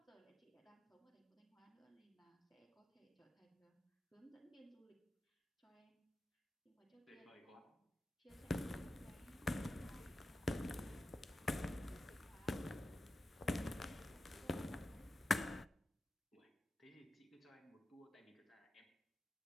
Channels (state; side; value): normal; both; correlation 0.92